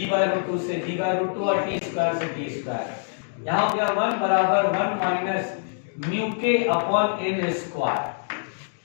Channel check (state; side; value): silent; right; digital silence